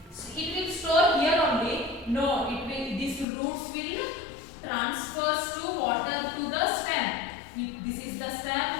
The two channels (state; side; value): drops out; right; at 3.2 s